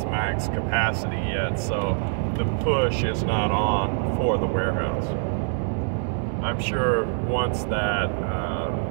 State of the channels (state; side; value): silent; left; digital silence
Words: max capacity yet, so the push is not on for the warehouse. I'm sure once that